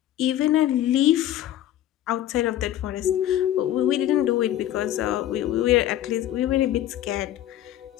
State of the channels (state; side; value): quieter; right; 12.6 dB